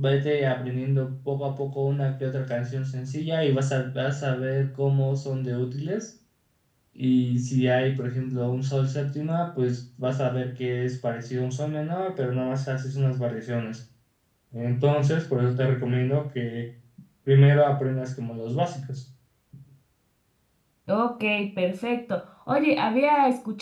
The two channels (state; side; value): identical; both; correlation 1.00